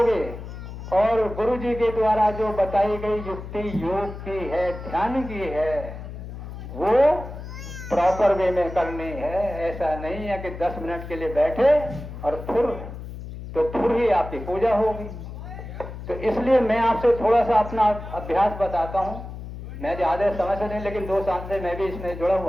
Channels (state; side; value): noise; left; hum, 10 dB below the sound